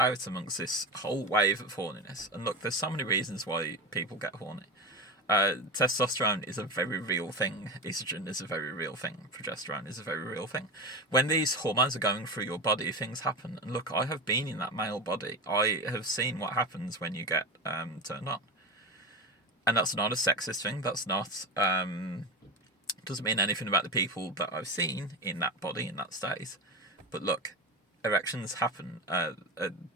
amongst this whole wave of horniness. And look, there's so many reasons why people get horny. Testosterone is a very real thing. Estrogen is a very real thing. Progesterone is a very real thing. When these hormones are going through your body, things happen. And look, I have been in that male body. I have seen what happens when you get turned on. And that's not a sexist thing. That's not... doesn't mean anything about the people that I've seen in that body, in that state. But look... erections happen.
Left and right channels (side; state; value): both; normal; correlation 0.22